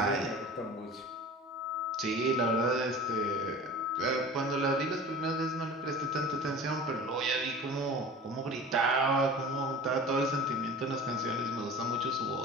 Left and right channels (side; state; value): both; normal; correlation 0.38